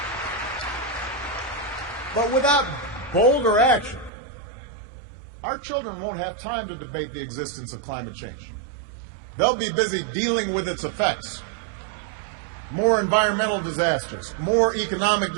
But without bolder action, our children won't have time to debate the existence of climate change. They'll be busy dealing with its effects. More environmental disasters, more economic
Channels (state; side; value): drops out; left; at 4.1 s